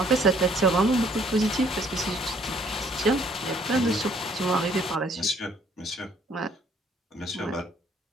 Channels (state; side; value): normal; both; correlation 0.63